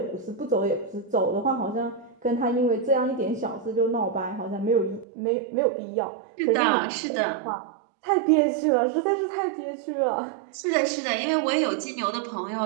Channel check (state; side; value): drops out; left; at 5.1 s